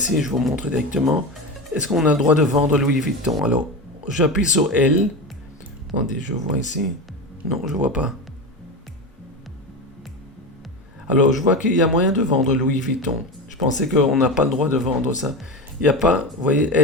je vous montre directement. Est-ce qu'on a le droit de vendre Louis Vuitton? Alors, j'appuie sur L. Attendez, je vois ici. Non, je ne vois pas. Alors, je vois qu'il y a moyen de vendre Louis Vuitton. Je pensais qu'on n'a pas le droit de vendre ça. Il n'y a pas, vous voyez,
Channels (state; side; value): normal; both; correlation 0.22